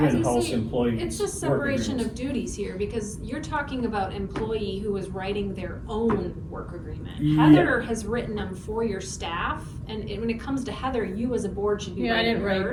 was gonna in-house say, employee. it's just work separation agreements. of duties here, because you're talking about employee who is writing their own work agreement. Yeah. Heather has written them for your staff, and when it comes to Heather, you as a board should be Yeah, I writing didn't write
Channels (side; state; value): both; identical; correlation 1.00